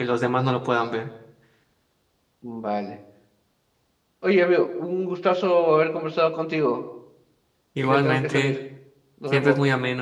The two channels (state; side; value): identical; both; correlation 1.00